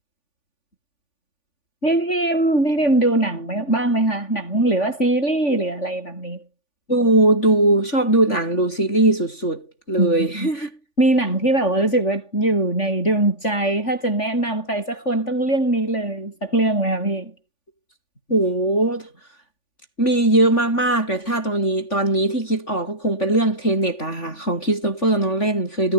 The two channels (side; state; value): right; late; 3.5 ms